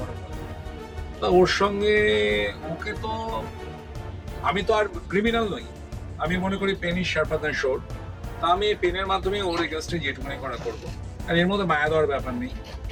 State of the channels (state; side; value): identical; both; correlation 1.00